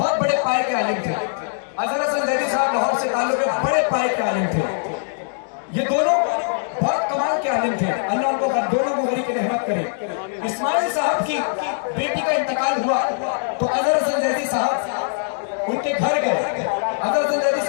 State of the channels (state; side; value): silent; right; digital silence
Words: بڑے پائے کے عالم تھے۔ اظہر حسن زیدی صاحب لاہور سے تعلق ہے، بڑے پائے کے عالم تھے۔ یہ دونوں بہت کمال کے عالم تھے، اللہ ان کو دونوں کو غریق رحمت کرے۔ اسماعیل صاحب کی بیٹی کا انتقال ہوا تو اظہر حسن زیدی صاحب ان کے گھر گئے۔ اظہر حسن زیدی